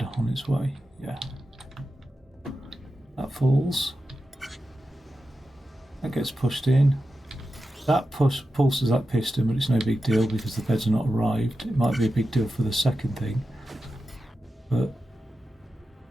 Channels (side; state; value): both; normal; correlation 0.91